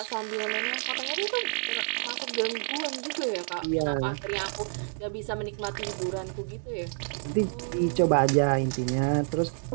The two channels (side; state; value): left; silent; 59 dB below the other